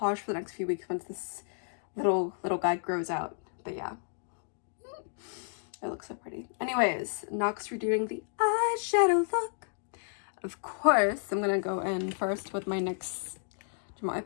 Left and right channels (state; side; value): silent; right; digital silence